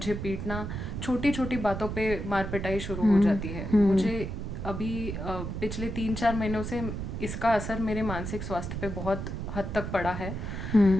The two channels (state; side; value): noise; right; rumble, 5 dB below the sound